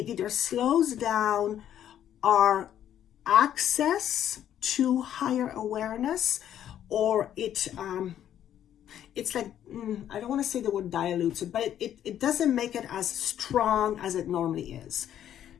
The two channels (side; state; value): right; quieter; 10.6 dB